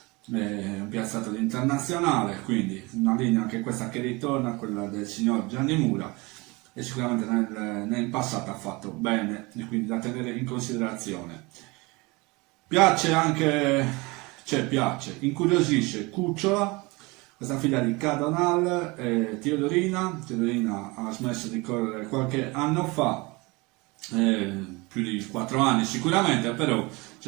un piazzato di internazionale, quindi una linea anche questa che ritorna a quella del signor Gianni Mura, e sicuramente nel passato ha fatto bene, e quindi da tenere in considerazione. Piace anche, incuriosisce Cucciola, questa figlia di Cadonal e Teodorina ha smesso di correre qualche anno fa, più di 4 anni sicuramente, però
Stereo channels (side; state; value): left; quieter; 25.1 dB